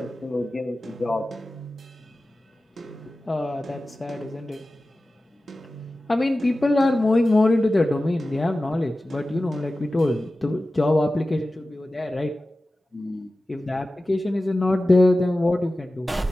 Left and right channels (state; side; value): normal; both; correlation 0.95